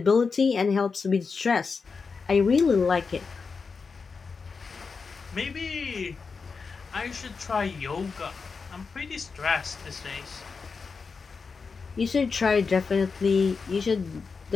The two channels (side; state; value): right; quieter; 5.0 dB